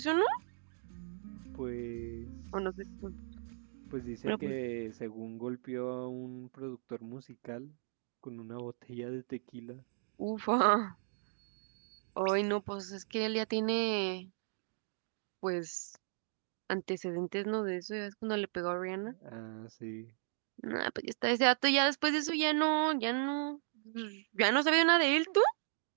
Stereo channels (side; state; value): left; silent; digital silence